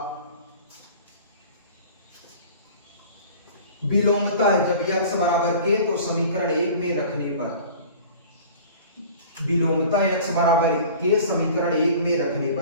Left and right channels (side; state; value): both; inverted; correlation -0.43